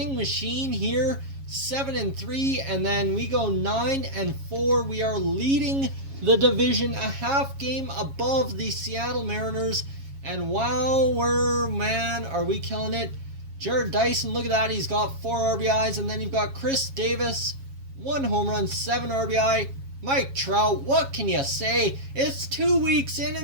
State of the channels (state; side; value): late; left; 7.3 ms